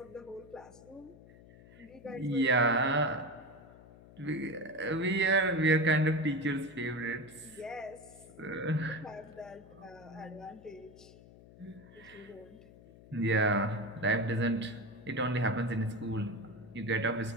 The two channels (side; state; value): left; noise; hum, 21 dB below the sound